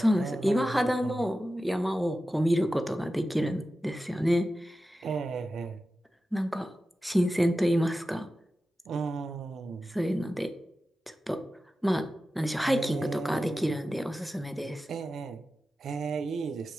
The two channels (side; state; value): both; normal; correlation 0.93